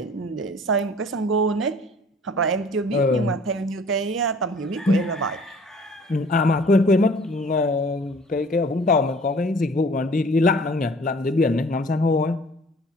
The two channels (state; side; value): normal; both; correlation 0.51